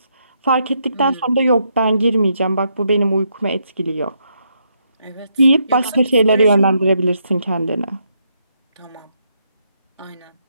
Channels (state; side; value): inverted; both; correlation -0.77